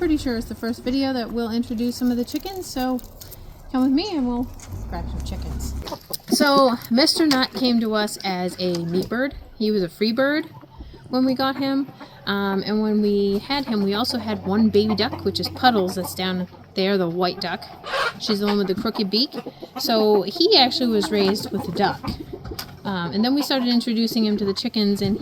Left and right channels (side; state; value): both; identical; correlation 1.00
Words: sure it's the first video that we'll introduce some of the chickens, so come with me and we'll grab some chickens. So Mr. Nut came to us as a meat bird. He was a free bird when we got him. And when we had him, we also had one baby duck, which is Puddles, that's down there, the white duck. She's the one with the crooked beak. So he actually was raised with a duck. And then we started introducing him to the chickens, and